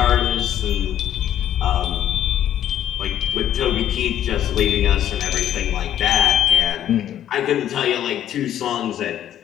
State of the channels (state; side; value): quieter; right; 11.1 dB